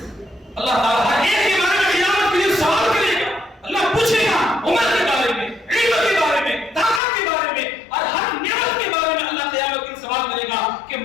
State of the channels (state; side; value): drops out; right; at 7.0 s